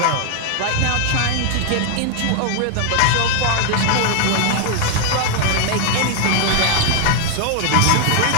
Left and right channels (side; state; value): both; different; correlation 0.00